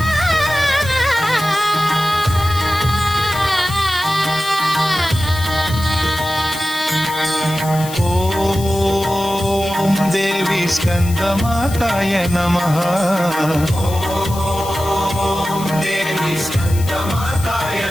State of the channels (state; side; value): noise; left; hiss, 13 dB below the sound